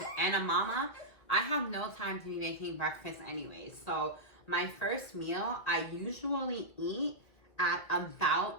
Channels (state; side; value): late; right; 2.0 ms